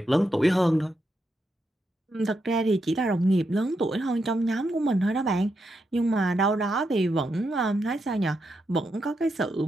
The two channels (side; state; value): both; normal; correlation 0.83